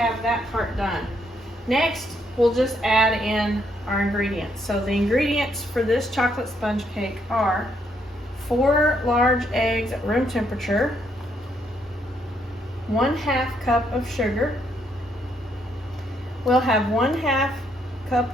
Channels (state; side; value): normal; both; correlation 0.73